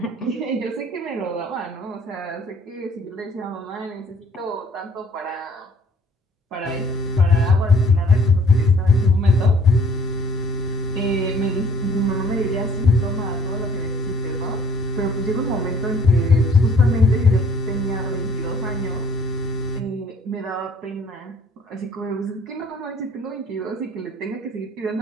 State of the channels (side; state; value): both; normal; correlation 0.56